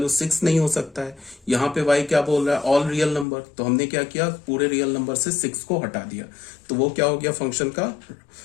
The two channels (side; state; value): right; drops out; at 3.2 s